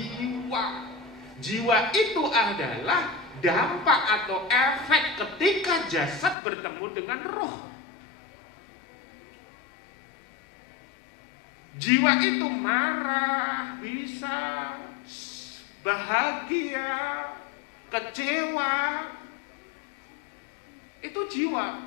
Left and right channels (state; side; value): drops out; right; at 6.4 s